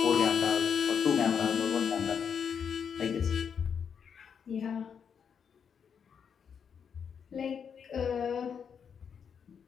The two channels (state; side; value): quieter; right; 7.1 dB